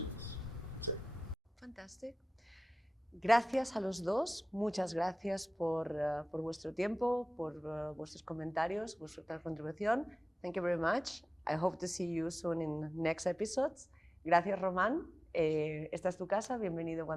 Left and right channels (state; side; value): normal; both; correlation 0.96